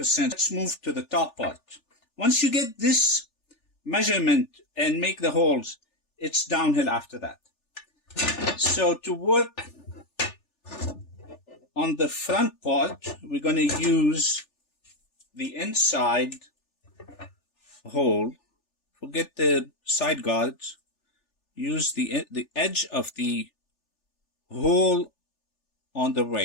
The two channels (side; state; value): right; late; 3.4 ms